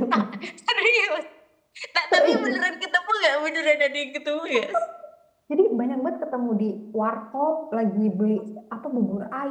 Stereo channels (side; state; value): both; identical; correlation 1.00